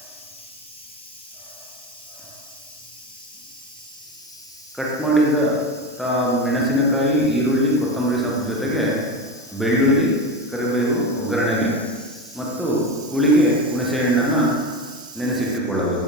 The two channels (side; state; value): both; normal; correlation 0.21